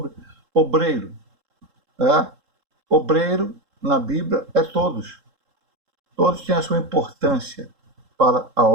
obreiro. Obreiro, na Bíblia, é todos. Todos têm a sua importância para a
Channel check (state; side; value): late; left; 3.7 ms